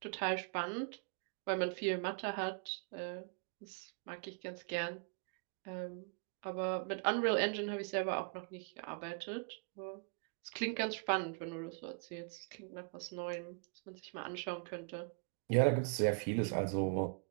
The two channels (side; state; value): left; quieter; 36.3 dB